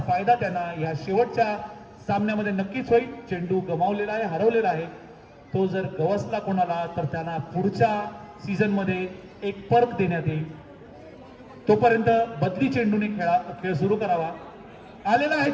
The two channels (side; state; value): both; identical; correlation 1.00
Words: फायदा त्यांना या शेवटच्या सामन्यामध्ये नक्कीच होईल. चेंडू गमावलेला आहे, हरवलेला आहे. तो जर गवसला कोणाला तर त्यांना पुढच्या सीझन मध्ये एक पर्क देण्यात येईल. तोपर्यंत बदली चेंडूने खेळ सुरू करावा. आलेला आहे